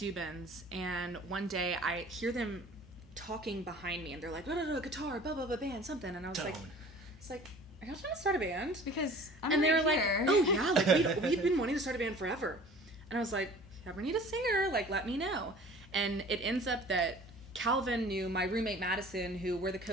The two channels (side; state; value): both; normal; correlation 0.46